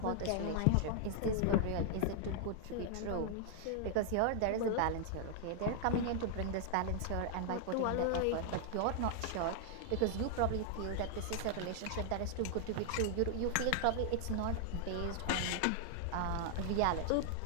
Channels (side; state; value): both; different; correlation 0.00